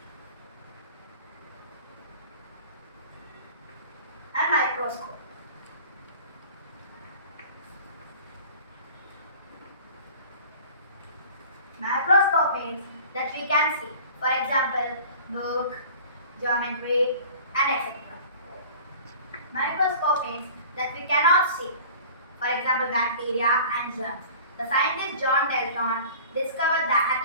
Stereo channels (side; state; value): both; inverted; correlation -0.44